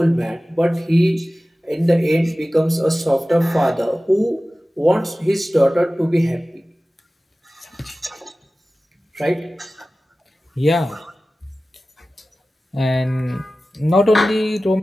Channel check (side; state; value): both; normal; correlation 0.96